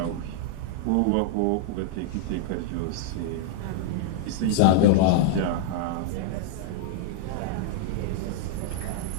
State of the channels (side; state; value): both; different; correlation -0.01